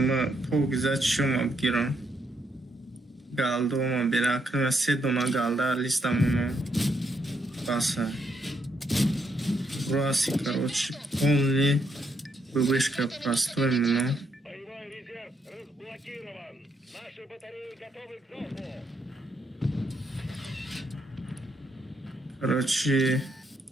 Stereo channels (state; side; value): normal; both; correlation 0.76